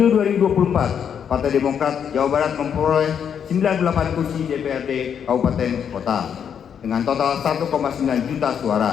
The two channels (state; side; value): quieter; right; 8.0 dB